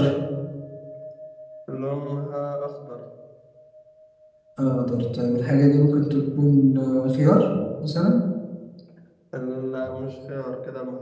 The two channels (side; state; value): both; identical; correlation 1.00